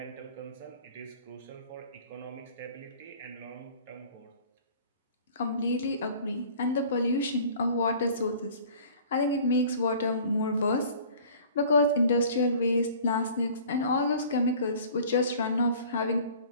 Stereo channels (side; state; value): both; inverted; correlation -0.48